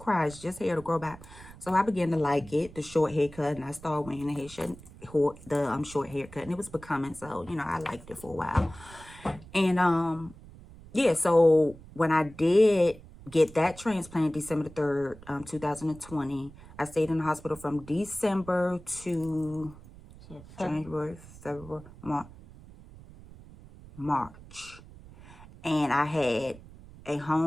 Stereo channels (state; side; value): noise; right; rumble, 19 dB below the sound